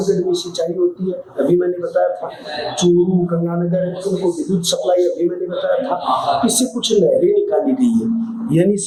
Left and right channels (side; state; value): both; identical; correlation 1.00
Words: में सिंचाई होती है, अभी मैंने बताया था। चूरू, गंगानगर उनको विद्युत सप्लाई अभी मैंने बताया था। इससे कुछ नहरें निकाली गई है, यानी